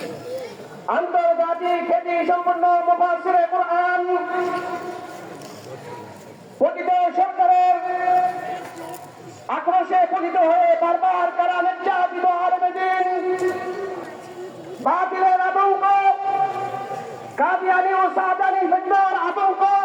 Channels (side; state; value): both; identical; correlation 1.00